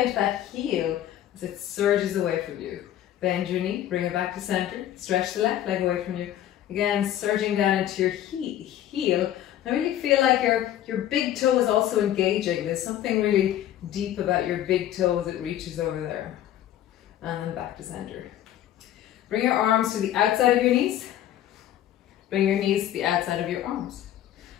into that heel as it surges away from you. Bend your knee, bring it back to center. Stretch the left leg away from you. Again, surging down into your heel. I really feel like your big toe is also engaging. There's something really deep about your big toe as it reaches over there. And then back to center. Bring your arms to the outside of your knees. Bring your knees to the outside of your arms.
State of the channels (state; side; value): quieter; right; 12.0 dB